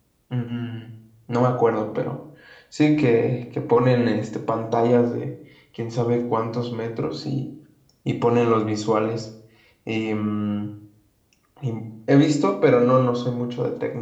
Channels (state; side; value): identical; both; correlation 1.00